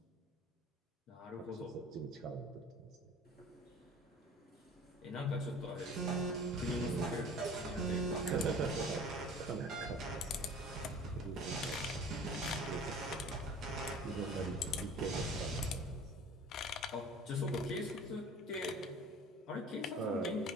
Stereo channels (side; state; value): both; normal; correlation 0.44